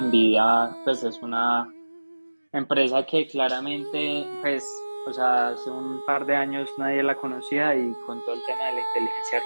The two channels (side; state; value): both; inverted; correlation -1.00